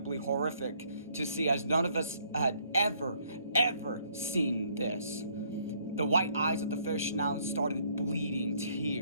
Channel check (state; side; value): inverted; both; correlation -0.66